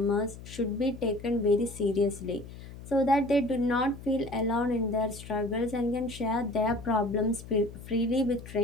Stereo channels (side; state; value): left; noise; hum, 15 dB below the sound